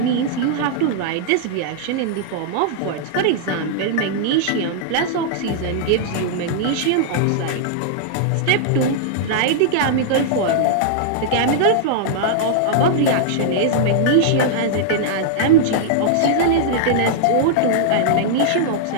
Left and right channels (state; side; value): different; both; correlation -0.01